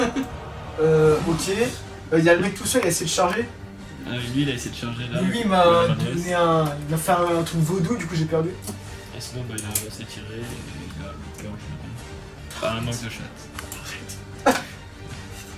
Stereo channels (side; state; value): both; identical; correlation 1.00